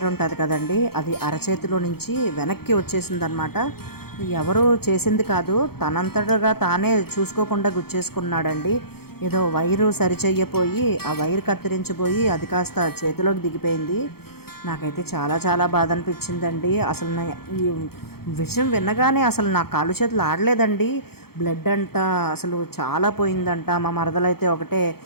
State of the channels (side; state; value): right; late; 0.95 ms